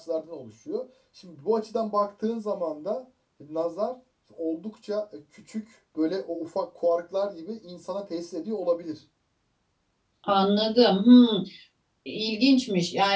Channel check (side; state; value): both; identical; correlation 1.00